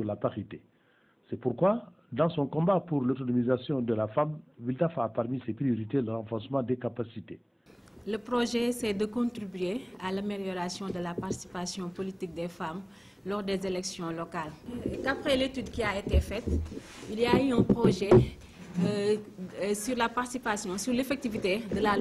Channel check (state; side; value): identical; both; correlation 1.00